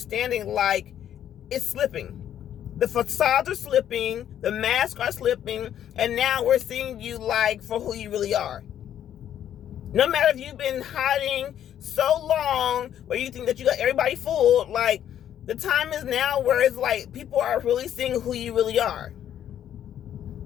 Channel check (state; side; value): quieter; right; 10.4 dB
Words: like it's slipping. The facades are slipping, the masks are slipping, and now we're seeing you like for who you really are. No matter if you've been hiding so long where you think that you got everybody fooled, like the time is now where it's like people are really seeing who you really are.